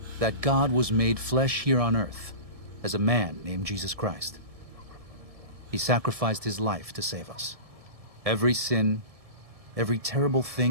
that God was made flesh here on earth as a man named Jesus Christ. He sacrificed his life to save us. Every sin, every terrible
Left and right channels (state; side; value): late; left; 1.7 ms